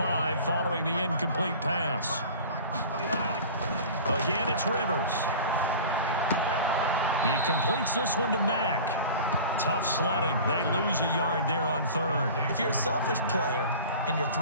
following the incomplete pass. Again, it's Rivers. He completes this one to Mack. Tough sledding. They lose a yard there on 3rd. If you're a selfish player and you're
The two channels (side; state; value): both; inverted; correlation -0.40